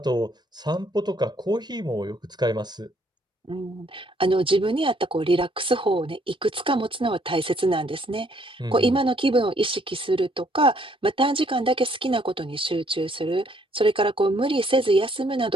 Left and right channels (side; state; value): both; normal; correlation 0.66